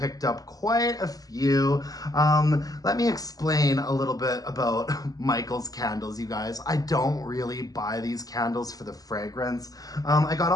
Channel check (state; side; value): late; right; 0.18 ms